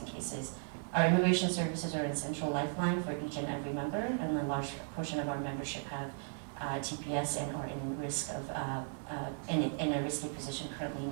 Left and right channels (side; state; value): left; silent; 54 dB below the other